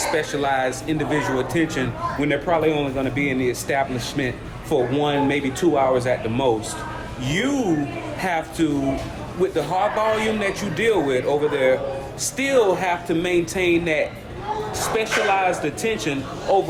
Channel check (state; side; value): identical; both; correlation 1.00